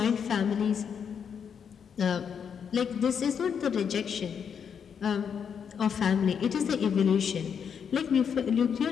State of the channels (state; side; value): quieter; right; 7.3 dB